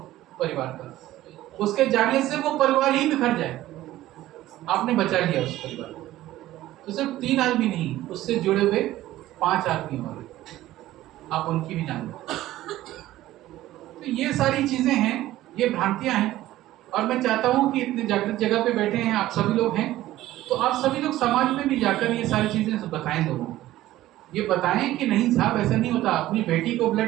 परिवार का, उसके जाने से वो परिवार ही बिखर जाए, आपने बचा लिया उस परिवार को। तो सिर्फ 3 आदमी नहीं, उससे जुड़े हुए 5 आदमी और आप उनकी भी जान लो। तो ये सारी चीजें हैं, ये भ्रांतियां हैं, और मैं चाहता हूं कि इतने जागृत जगह पे बैठे हैं आप सभी लोग हैं, तो आप सभी लोग समाज में भी जाकर ये सारी चीजें बताएं लोगों को, ये बताएं कि नहीं साहब ऐसा नहीं होता, अपनी बेटी को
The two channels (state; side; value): quieter; left; 15.2 dB